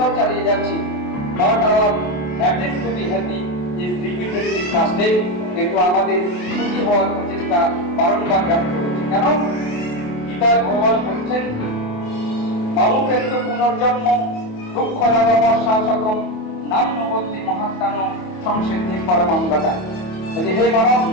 চালিয়ে যাচ্ছি। Not our attempt two be happy is repeatedly fasted. কিন্তু আমাদের সুখী হওয়ার প্রচেষ্টা বারংবার ব্যর্থ হচ্ছে। কেন? গীতায় ভগবান বলছেন, মামুপেত্য পুনর্জন্ম দুঃখ শাসকম নান্যবতী মহাত্মানো সংসিদ্ধি পরমাঙ্গদা। বলছে, হে মানব,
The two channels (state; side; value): late; right; 28 ms